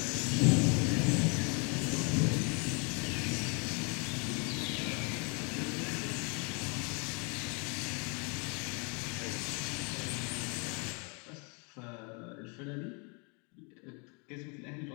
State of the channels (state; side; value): quieter; right; 34.2 dB